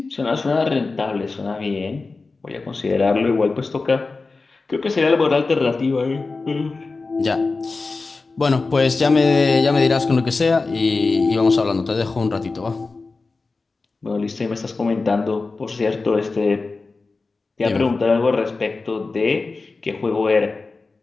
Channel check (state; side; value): quieter; right; 3.9 dB